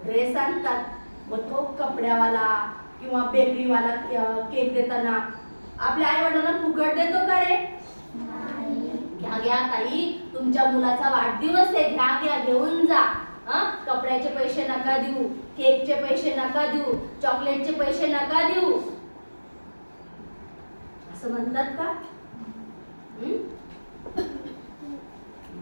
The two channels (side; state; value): both; inverted; correlation -1.00